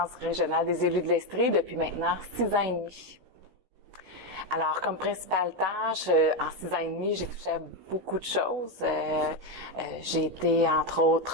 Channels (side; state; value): left; late; 16 ms